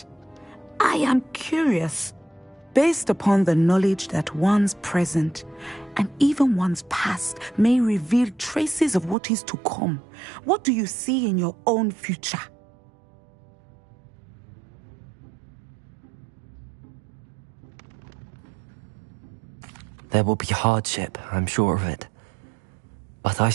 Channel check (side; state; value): left; drops out; at 9.2 s